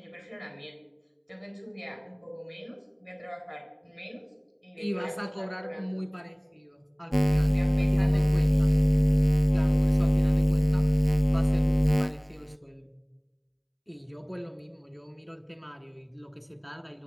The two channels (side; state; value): both; identical; correlation 1.00